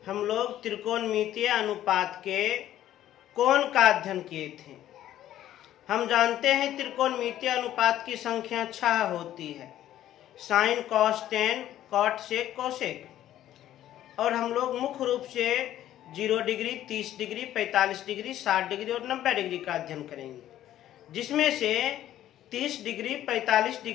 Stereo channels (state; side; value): quieter; right; 12.5 dB